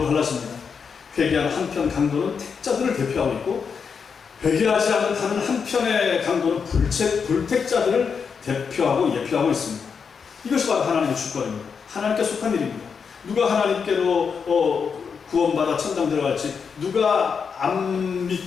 회개한 한편 강도는 택자들을 대표하고 있고 회개하지 않는 다른 한편의 강도는 불택자들을 대표하고 예표하고 있습니다. 이것이 바로 하나님의 주권입니다. 하나님께 속한 일입니다. 누가 하나님께로 구원받아 천당 들어갈지 누가 안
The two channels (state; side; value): quieter; right; 6.1 dB